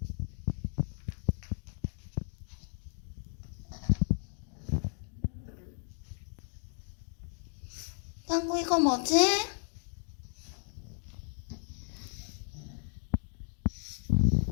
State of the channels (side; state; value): right; silent; 55 dB below the other